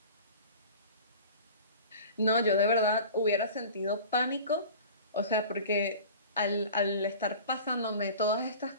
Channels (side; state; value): both; inverted; correlation -0.40